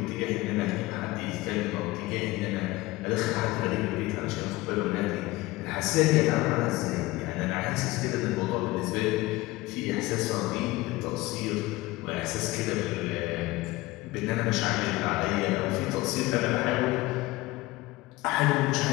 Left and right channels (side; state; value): right; quieter; 19.7 dB